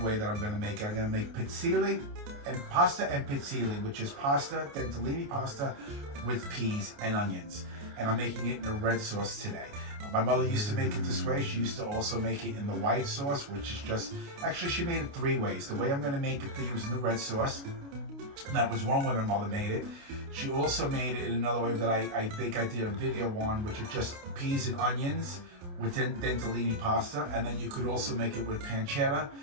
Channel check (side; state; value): left; late; 29 ms